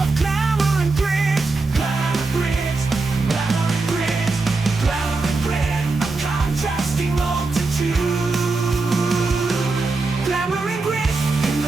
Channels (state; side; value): quieter; left; 3.7 dB